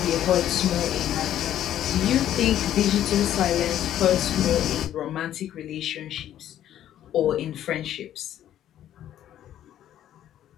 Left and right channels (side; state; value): right; quieter; 11.5 dB